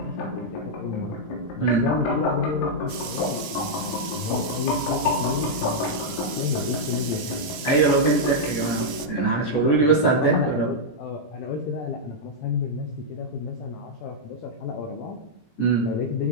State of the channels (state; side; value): late; right; 17 ms